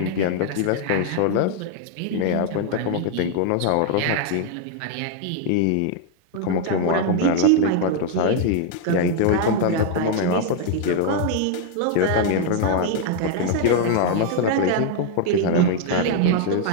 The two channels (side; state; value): both; different; correlation 0.00